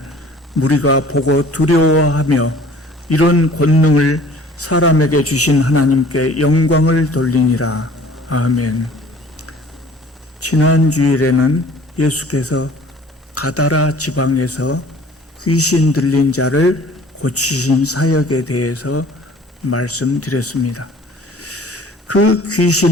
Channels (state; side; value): normal; both; correlation 0.50